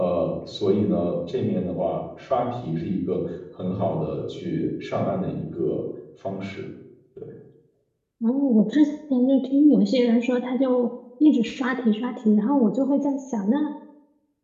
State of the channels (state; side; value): identical; both; correlation 1.00